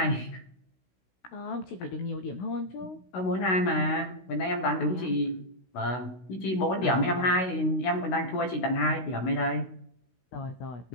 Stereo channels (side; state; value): right; late; 16 ms